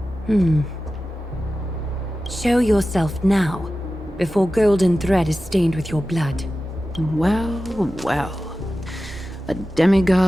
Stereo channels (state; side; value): normal; both; correlation 0.94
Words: Show yourself now, before golden thread is stained with your blood. Well, well. A